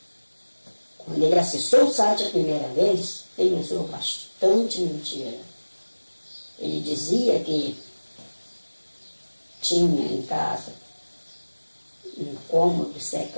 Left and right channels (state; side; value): inverted; both; correlation -1.00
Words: Quando ele acessou o site a primeira vez, ele usou bastante mentira. Ele dizia que tinha em casa um cômodo